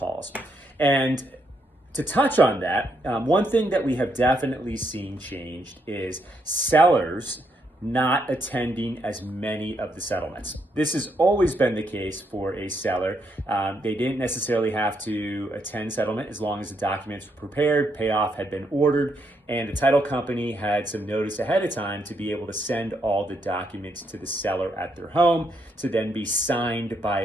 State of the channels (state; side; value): normal; both; correlation 0.77